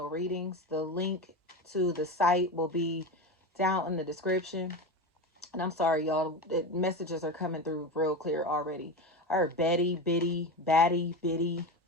readings. The link to the site will be down in the description. And I'm sorry, y'all, the messages are coming through real clear already. I heard Betty, Biddy, Batty, Biddy,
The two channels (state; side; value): normal; both; correlation 0.22